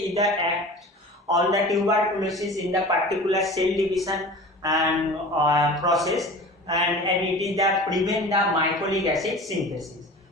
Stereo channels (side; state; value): both; normal; correlation 0.38